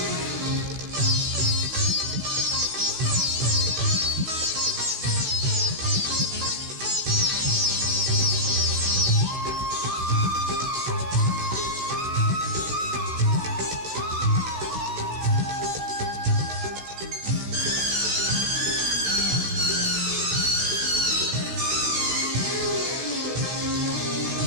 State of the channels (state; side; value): late; left; 16 ms